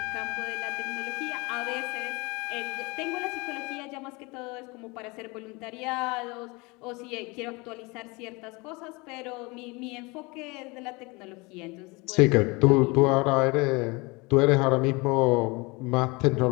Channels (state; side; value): quieter; right; 26.1 dB